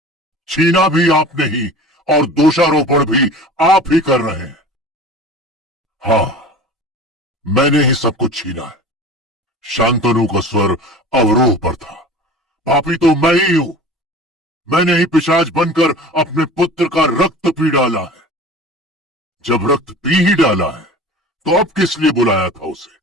छीना भी आपने ही और दोषारोपण भी आप ही कर रहे हैं। हाँ, मैंने ही सब कुछ छीना है। शांतनु का स्वर अवरोह पर था। पापी तो मैं ही हूं। मैंने ही पिशाच बनकर अपने पुत्र का रक्त पी डाला है। जब रक्त पी ही डाला है तो अब किस लिए बुलाया था उसे?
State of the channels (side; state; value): both; normal; correlation 0.39